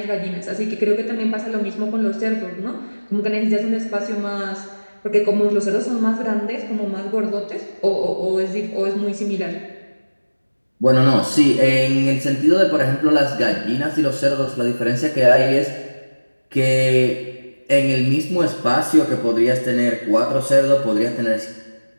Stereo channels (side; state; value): both; inverted; correlation -1.00